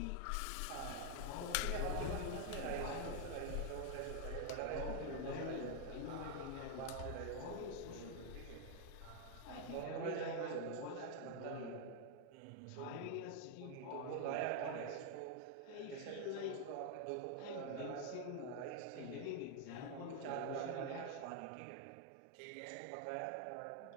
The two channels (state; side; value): different; both; correlation 0.00